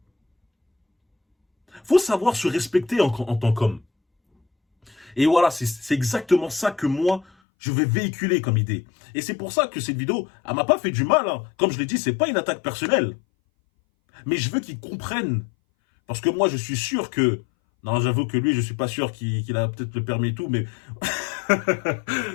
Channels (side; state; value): right; drops out; at 7.2 s